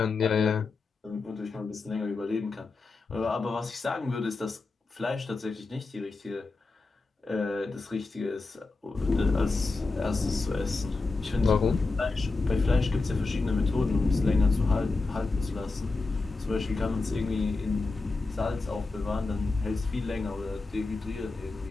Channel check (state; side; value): quieter; right; 3.7 dB